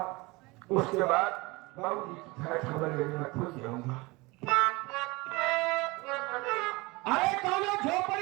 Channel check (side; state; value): left; quieter; 23.9 dB